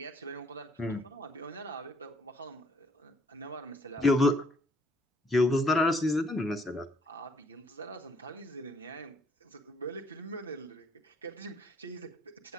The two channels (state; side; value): normal; both; correlation 0.66